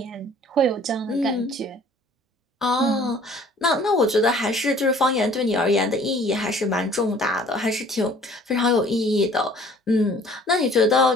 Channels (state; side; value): normal; both; correlation 0.53